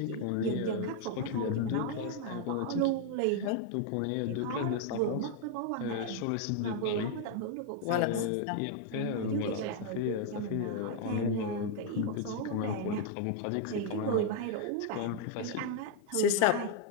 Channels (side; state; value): both; different; correlation 0.00